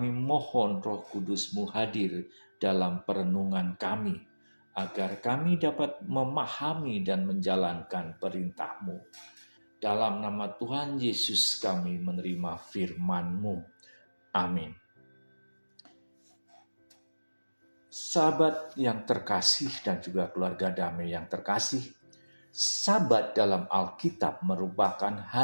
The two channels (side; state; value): both; inverted; correlation -1.00